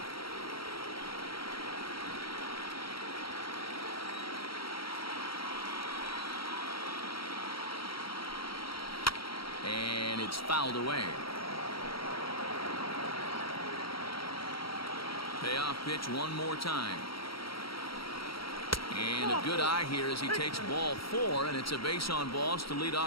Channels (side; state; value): right; late; 0.75 ms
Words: And it's fouled away. Payoff pitch one more time. And a good eye here as he takes ball four, and it's a base on balls to lead